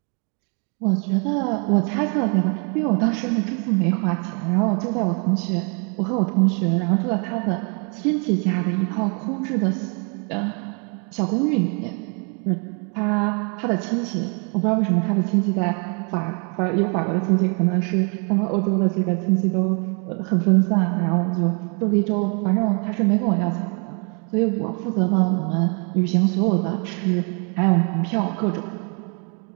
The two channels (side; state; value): left; quieter; 37.4 dB